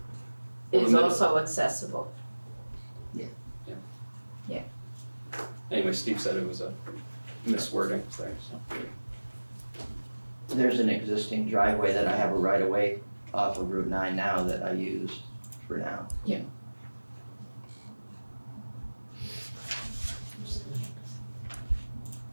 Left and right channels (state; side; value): inverted; both; correlation -1.00